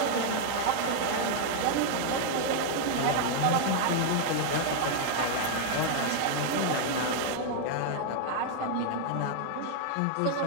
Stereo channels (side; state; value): both; different; correlation 0.00